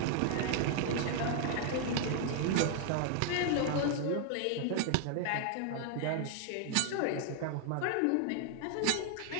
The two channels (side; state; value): both; different; correlation 0.00